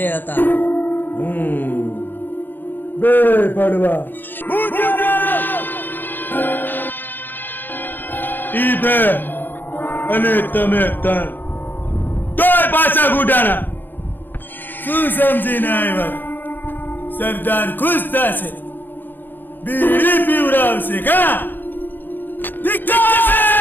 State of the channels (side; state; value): right; late; 0.092 ms